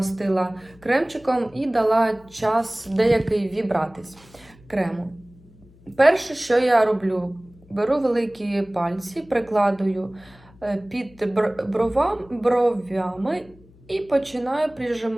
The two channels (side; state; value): left; noise; hum, 26 dB below the sound